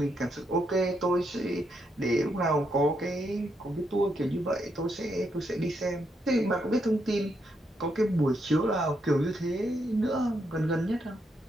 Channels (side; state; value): both; normal; correlation 0.79